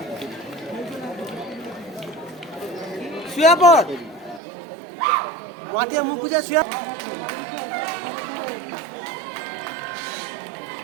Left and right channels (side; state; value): left; drops out; at 4.4 s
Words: শুয়ে পড়, মাটিয়া মুখ বুঝে শুয়ে।